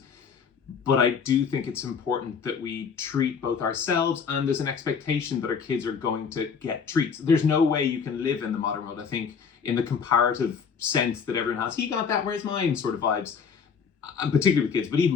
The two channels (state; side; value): quieter; right; 6.3 dB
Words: but I do think it's important that we treat both ourselves, and there's an expectation that our kids are going to get treats. There's no way you can live in the modern world, I think, in the comparative sense that everyone has, he got that, where's mine sort of vibes, and particularly with kids, but